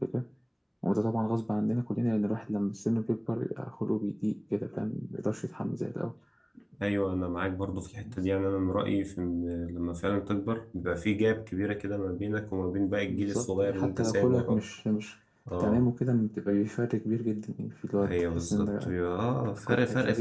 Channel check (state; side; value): identical; both; correlation 1.00